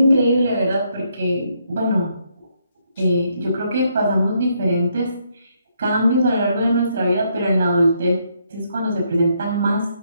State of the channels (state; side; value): inverted; both; correlation -0.75